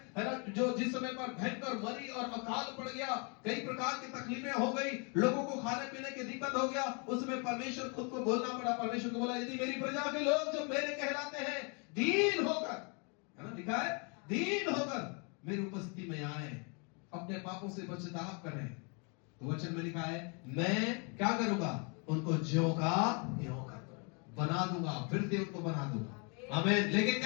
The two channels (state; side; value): quieter; right; 35.1 dB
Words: ना, जो जिस समय पर भयंकर मरी और अकाल पड़ गया, कई प्रकार की तकलीफें हो गई, लोगों को खाने पीने की दिक्कत हो गया, उसमें परमेश्वर खुद को बोलना पड़ा। परमेश्वर को बोला, यदि मेरी प्रजा के लोग जो मेरे कहलाते हैं दीन होकर, है ना, लिखा है दीन होकर मेरी उपस्थिति में आए, अपने पापों से पश्चाताप करें, तो वचन में लिखा है मैं क्या करूंगा? उनको ज्यों का त्यों बना दूंगा, फिर से उनको बना दूंगा। आमीन। लेकिन